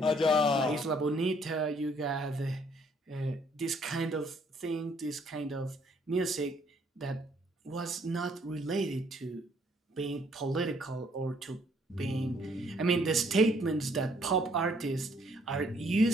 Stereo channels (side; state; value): both; normal; correlation 0.65